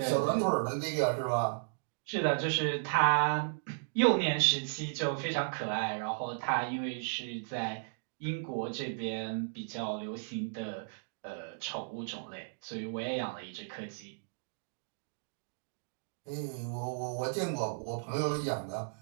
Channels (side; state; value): left; silent; digital silence